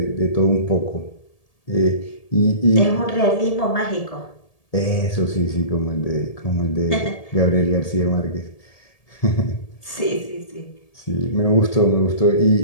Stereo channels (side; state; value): right; late; 1.8 ms